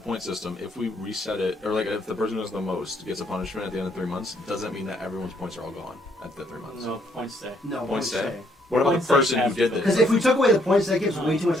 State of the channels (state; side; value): normal; both; correlation 0.70